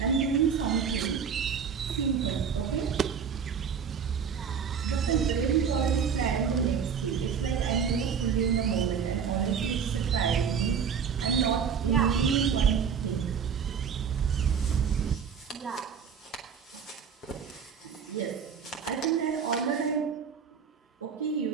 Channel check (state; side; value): quieter; left; 6.9 dB